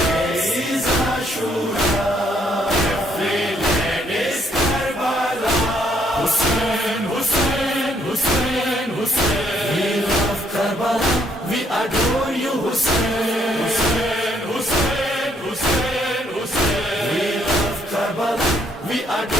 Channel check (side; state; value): both; normal; correlation 0.69